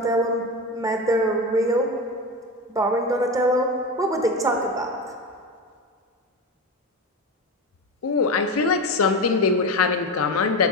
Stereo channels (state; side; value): normal; both; correlation 0.22